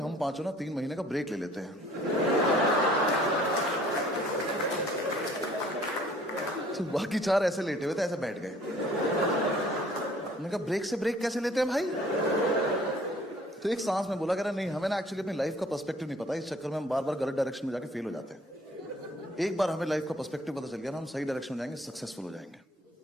पांचों ना 3 महीने का ब्रेक ले लेते हैं। तो बाकी 4 ऐसे लेटे हुए थे, ऐसे बैठ गए। मैंने कहा ब्रेक से ब्रेक कैसे लेते हैं भाई? तो एक सांस में बोला, कह रहा नहीं हमें ना एक्चुअली अपनी लाइफ का पर्सपेक्टिव नहीं पता, इस चक्कर में हम बार बार गलत डायरेक्शन में जाके फेल हो जाते हैं। एक बार हमें लाइफ का पर्सपेक्टिव पता चल गया ना, हम सही डायरेक्शन में जाएंगे, सक्सेसफुल हो जाएंगे।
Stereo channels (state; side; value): normal; both; correlation 0.55